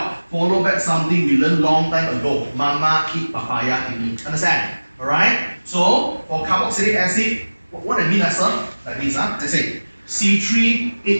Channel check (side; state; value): both; inverted; correlation -1.00